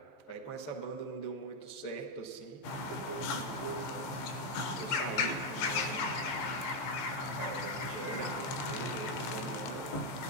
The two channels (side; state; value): right; late; 15 ms